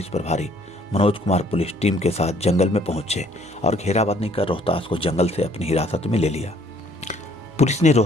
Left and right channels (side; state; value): both; normal; correlation 0.61